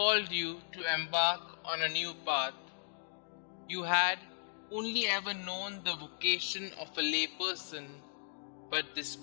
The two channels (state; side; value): silent; right; digital silence